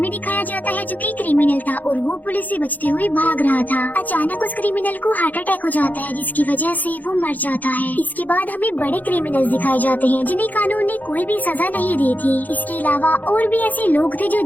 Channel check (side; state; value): right; late; 0.082 ms